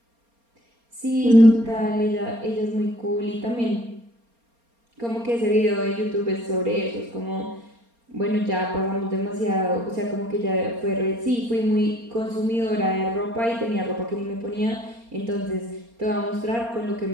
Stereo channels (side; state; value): left; late; 4.3 ms